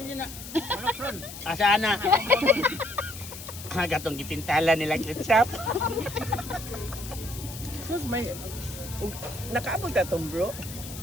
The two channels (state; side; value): noise; left; hiss, 12 dB below the sound